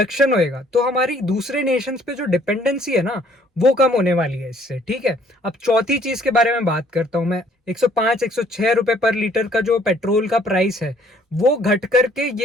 होएगा, तो हमारी दूसरे नेशंस पे जो डिपेंडेंसी है ना वो कम होने वाली है इससे। ठीक है। अब चौथी चीज के बारे में बात करता हूं मैं। 105 106 रुपए पर लीटर का जो पेट्रोल का प्राइस है वो घट करके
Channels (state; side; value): normal; both; correlation 0.62